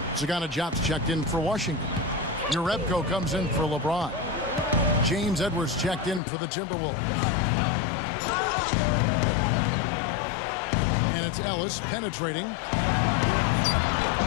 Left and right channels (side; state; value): right; drops out; at 6.2 s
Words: Sagana Jobs checked in for Washington. Urebko comes in for LeBron. James Edwards checked in for the Timberwolves. And it's Ellis penetrating.